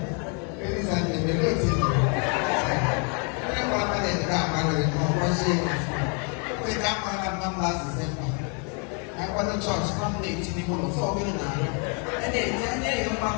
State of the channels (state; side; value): quieter; right; 37.8 dB